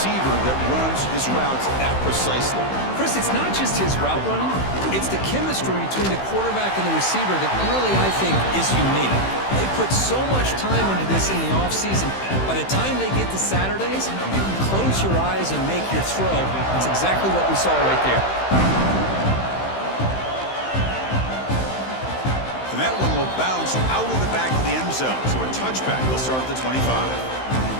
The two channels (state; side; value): late; right; 15 ms